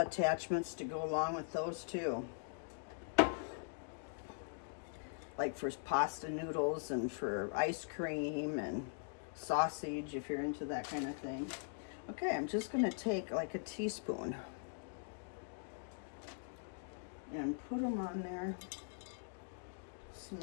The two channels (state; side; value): silent; right; digital silence